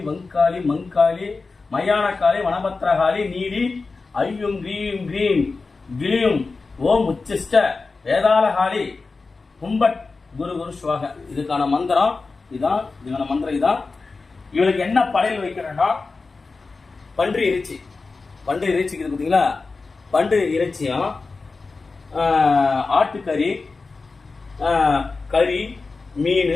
வங்காளி மங்காளி மயான வனபத்திரகாளி நீலி ஐயும் கிரீம் கிரீம் கிளியும் ஓம் உச்சிஷ்ட வேதாளகாளி கும்பட் குரு குரு சுவாக. இதுக்கான மந்திரம் இதான். இதுக்கான மந்திரம் இதான். இவளுக்கு என்ன படையல் வைக்கிறேன்னா பன்றி இறைச்சி. பன்றி இறைச்சிக்கு பார்த்தீங்களா, பன்றி இறைச்சியும் ஆட்டுக்கறி, கறி, மீன்,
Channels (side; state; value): right; quieter; 4.0 dB